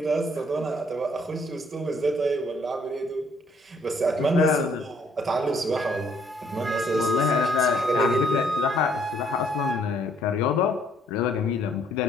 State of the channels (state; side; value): normal; both; correlation 0.65